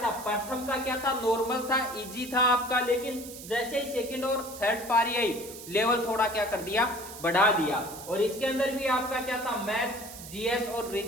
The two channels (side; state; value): right; noise; hiss, 13 dB below the sound